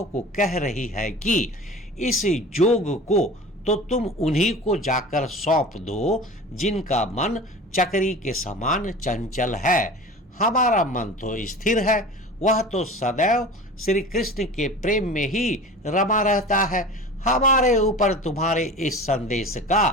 को कह रही है कि इस जोग को तो तुम उन्हीं को जाकर सौंप दो, जिनका मन चक्री के समान चंचल है। हमारा मन तो स्थिर है, वह तो सदैव श्री कृष्ण के प्रेम में ही रमा रहता है। हमारे ऊपर तुम्हारे इस संदेश का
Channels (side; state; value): both; normal; correlation 0.37